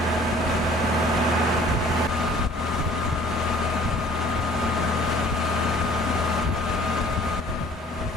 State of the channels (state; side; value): normal; both; correlation 0.53